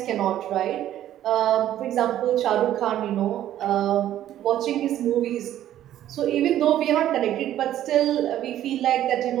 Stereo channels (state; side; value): quieter; left; 12.2 dB